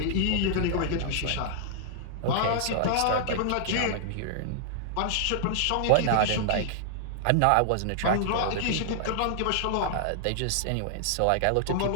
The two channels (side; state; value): both; different; correlation -0.01